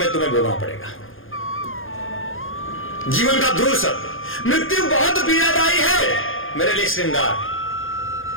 तुम्हें भोगना पड़ेगा। जीवन का ध्रुव सत्य, मृत्यु बहुत पीड़ादायी है मेरे लिए श्रृंगार।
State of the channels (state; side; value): late; right; 0.59 ms